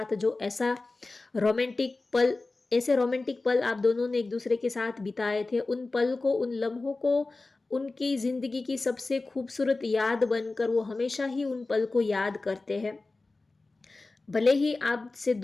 जो रोमांटिक पल ऐसे रोमांटिक पल आप दोनों ने एक दूसरे के साथ बिताए थे, उन पल को, उन लम्हों को, उनकी ज़िंदगी की सबसे खूबसूरत याद बनकर वो हमेशा ही उन पल को याद करते हैं। भले ही आपसे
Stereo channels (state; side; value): quieter; right; 3.4 dB